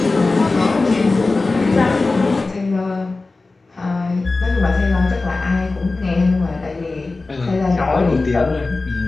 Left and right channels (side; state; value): right; quieter; 3.5 dB